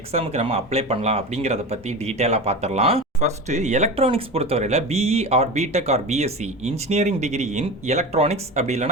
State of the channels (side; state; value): both; normal; correlation 0.28